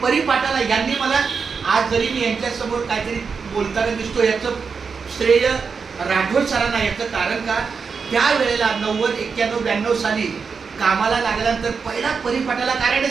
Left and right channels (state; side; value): quieter; left; 5.5 dB